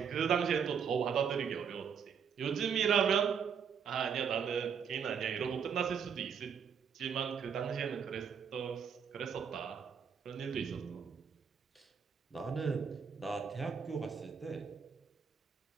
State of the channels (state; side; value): quieter; left; 7.0 dB